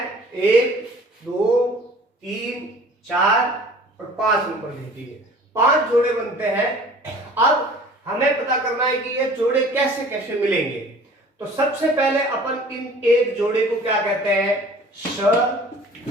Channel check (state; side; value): normal; both; correlation 0.47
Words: 1, 2, 3, 4 और 5 नंबर दे दिए। 5 जोड़े बनते हैं। अब हमें पता करना है कि ये जोड़े कैसे कैसे मिलेंगे। तो सबसे पहले अपन इन एक जोड़े को क्या कहते हैं,